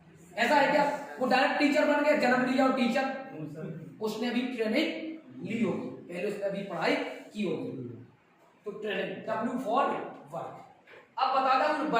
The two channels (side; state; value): both; identical; correlation 1.00